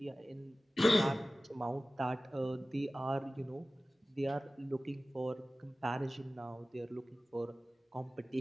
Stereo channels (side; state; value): both; normal; correlation 0.97